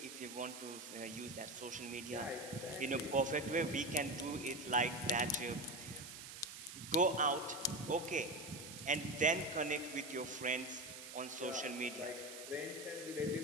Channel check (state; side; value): noise; right; hiss, 11 dB below the sound